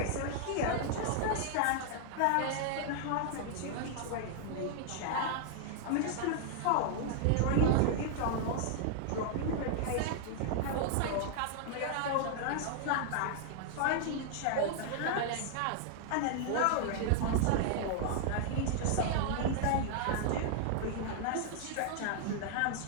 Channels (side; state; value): both; different; correlation 0.00